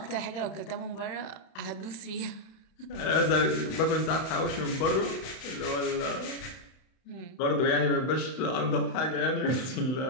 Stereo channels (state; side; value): late; right; 31 ms